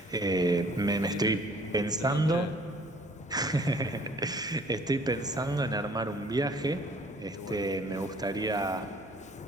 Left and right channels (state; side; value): normal; both; correlation 0.56